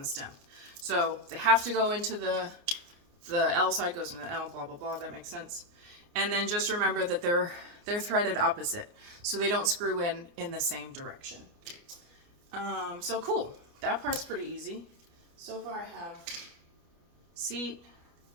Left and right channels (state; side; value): late; left; 29 ms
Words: stem. So they have to go into the L side goes into the L, blah, blah, blah, that makes sense. And then just remember that they're threaded opposite, so they don't screw in the same direction. So cool, that part's pretty easy. So far I have seat